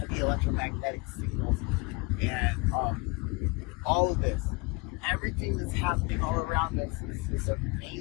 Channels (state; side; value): quieter; right; 27.2 dB